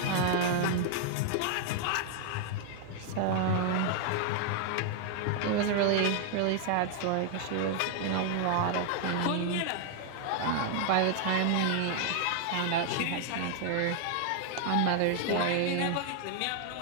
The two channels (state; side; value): different; both; correlation 0.00